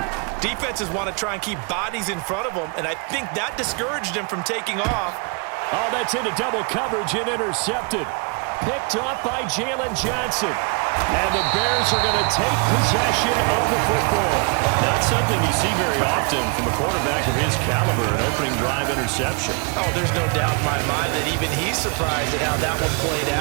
defenses want to try and keep bodies in front of them, and I think that discouraged him from taking off. Oh, that's into double coverage and intercepted. Picked off by Jalen Johnson. And the Bears are going to take possession of the football. Not something you see very often from a quarterback of his caliber, an opening drive interception. Oh, there's no doubt in my mind that even he's surprised at how that one played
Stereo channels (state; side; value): quieter; left; 33.0 dB